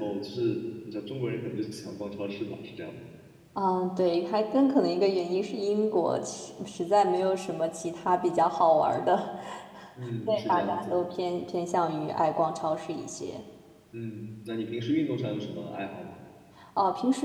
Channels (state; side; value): identical; both; correlation 1.00